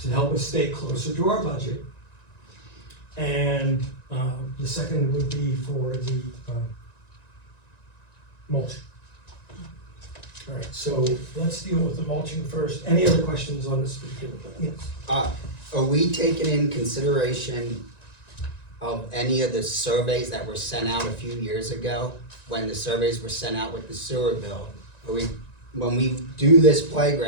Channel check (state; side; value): late; right; 1.9 ms